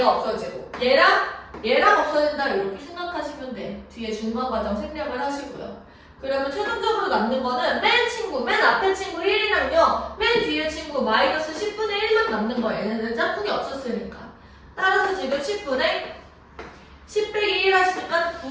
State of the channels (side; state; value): both; identical; correlation 1.00